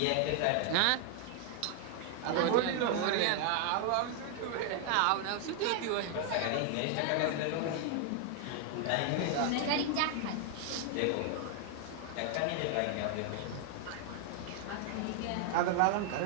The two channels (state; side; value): different; both; correlation 0.00